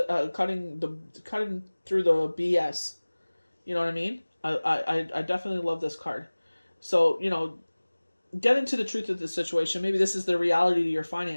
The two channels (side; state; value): both; inverted; correlation -1.00